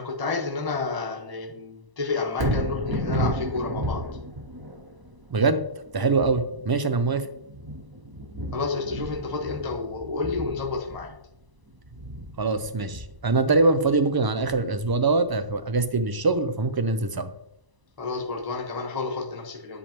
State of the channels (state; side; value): late; left; 1.0 ms